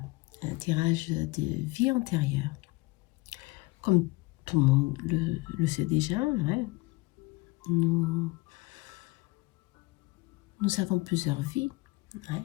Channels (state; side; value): quieter; right; 22.6 dB